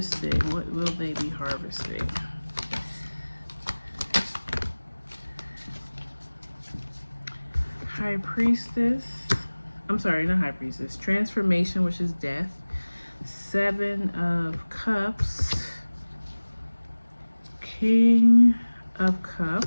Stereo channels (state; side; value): inverted; both; correlation -1.00